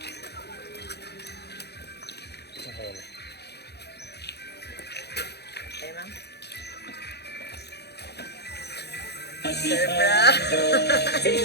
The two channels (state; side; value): late; right; 0.48 ms